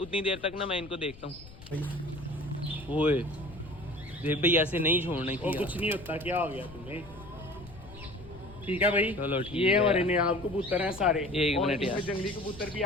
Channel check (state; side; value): noise; left; rumble, 18 dB below the sound